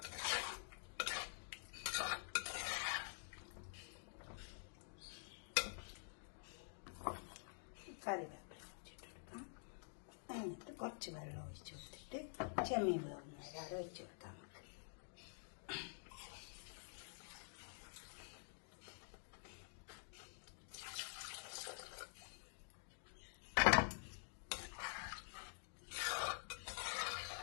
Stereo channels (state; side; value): silent; right; digital silence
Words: കറിവേപ്പില ഒഴിച്ചിട്ട് കൊടുക്കാം. എന്നിട്ട് കുറച്ച് വെള്ളം ഒഴിച്ച് കൊടുത്തിട്ട് ചെമ്മീൻ വേവുന്ന വരെ അവിടെ ഒഴിച്ച് കൊടുക്കാം.